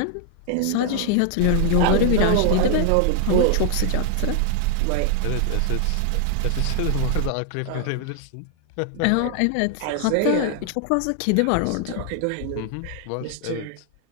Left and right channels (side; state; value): both; different; correlation 0.00